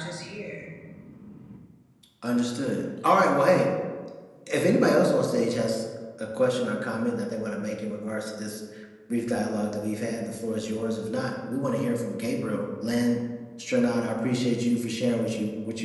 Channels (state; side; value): identical; both; correlation 1.00